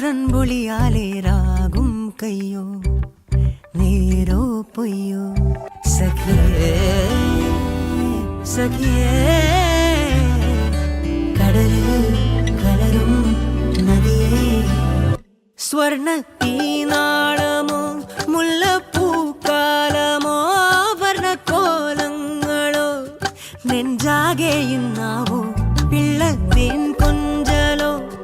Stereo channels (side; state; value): both; identical; correlation 1.00